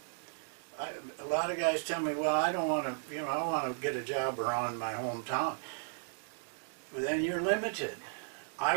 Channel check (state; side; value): silent; left; digital silence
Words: A lot of guys tell me, well, I don't want to, I want to get a job around my hometown. But then you're limited. I